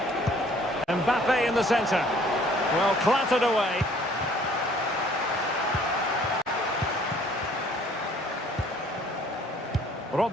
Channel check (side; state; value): both; normal; correlation 0.57